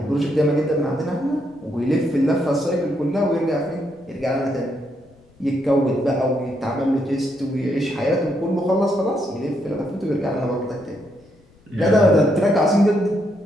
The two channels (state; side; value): noise; left; rumble, 30 dB below the sound